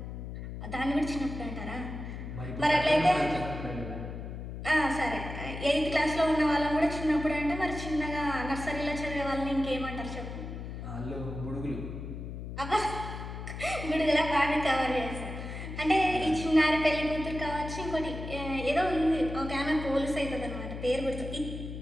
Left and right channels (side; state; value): left; noise; hum, 8 dB below the sound